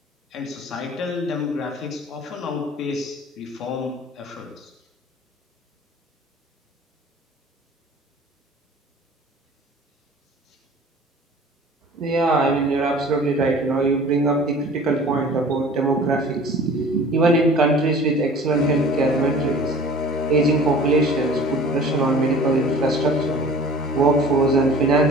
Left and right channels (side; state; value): both; normal; correlation 0.45